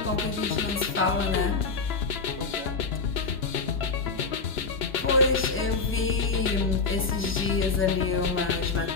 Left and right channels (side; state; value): right; quieter; 4.4 dB